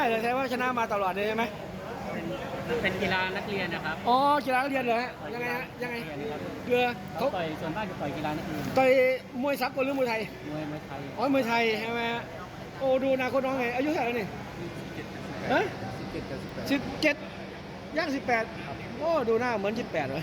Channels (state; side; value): identical; both; correlation 1.00